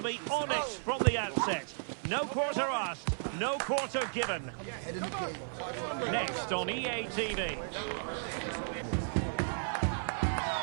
be honest from the outset. No quarter asked, no quarter given. Next on EA TV.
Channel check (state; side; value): silent; left; 55 dB below the other